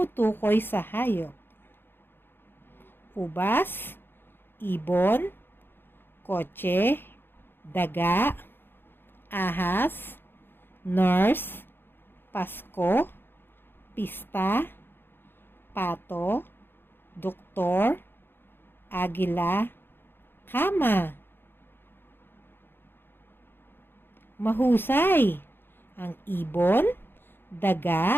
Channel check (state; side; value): late; right; 0.10 ms